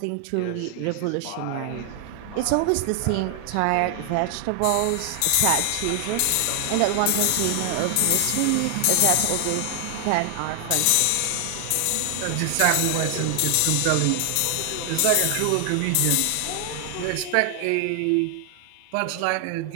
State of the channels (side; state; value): both; different; correlation 0.00